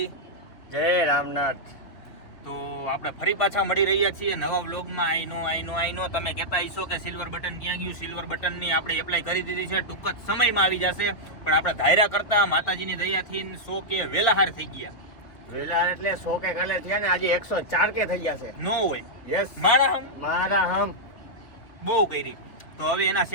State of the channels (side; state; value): right; late; 3.3 ms